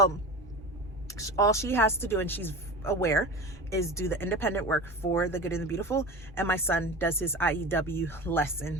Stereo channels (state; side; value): normal; both; correlation 0.30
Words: all she has to do, and she's aware, is do the independent work for the good and the beautiful, and my son does his IEW lesson